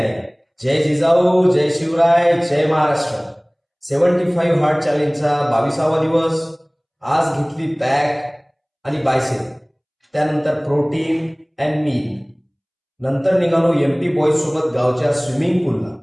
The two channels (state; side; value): identical; both; correlation 1.00